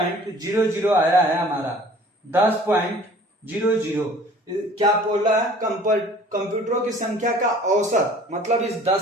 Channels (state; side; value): normal; both; correlation 0.50